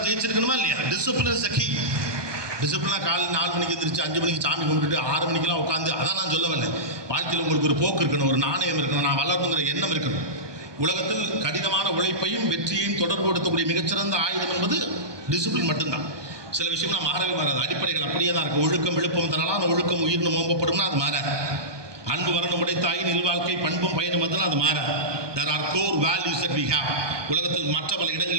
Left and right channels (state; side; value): late; left; 1.2 ms